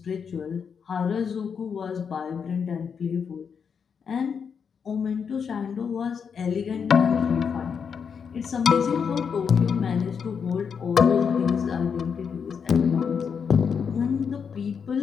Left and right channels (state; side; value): quieter; right; 6.6 dB